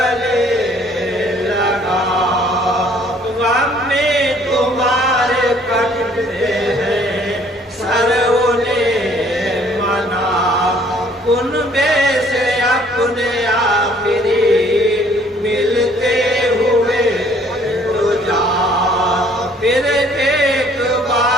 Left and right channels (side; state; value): both; normal; correlation 0.59